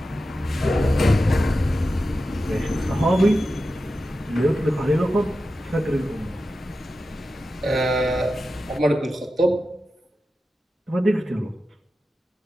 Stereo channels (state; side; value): normal; both; correlation 0.92